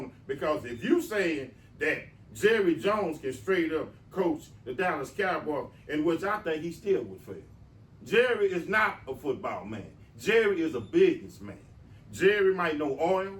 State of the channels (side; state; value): both; identical; correlation 1.00